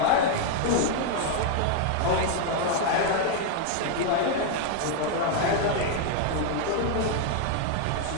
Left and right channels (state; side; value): different; both; correlation 0.00